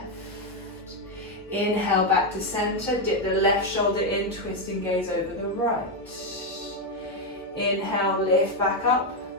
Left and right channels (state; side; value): noise; left; hum, 28 dB below the sound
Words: Inhale, back to center, dip the left shoulder in, twist and gaze over the right. Inhale, lift back up.